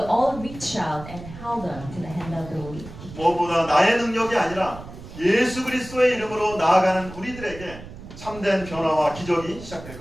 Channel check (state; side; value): noise; right; rumble, 14 dB below the sound